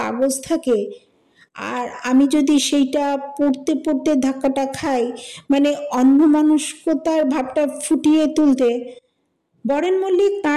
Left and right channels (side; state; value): both; identical; correlation 1.00